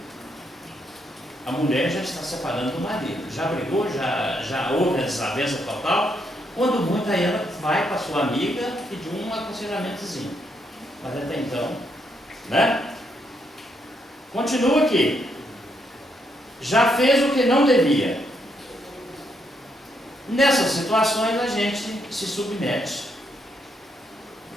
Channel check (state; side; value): normal; both; correlation 0.76